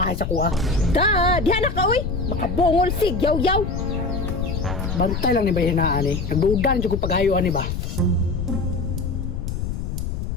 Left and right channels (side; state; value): left; noise; rumble, 3 dB below the sound